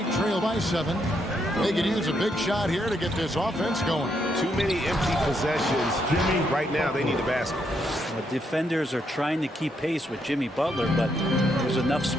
trail by 7. They could use a big shot here to get this offense going. Too many empty possessions. Jimmy, right now they need a basket. Well, defenders are trying to keep pace with Jimmy Butler, but there's enough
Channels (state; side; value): normal; both; correlation 0.77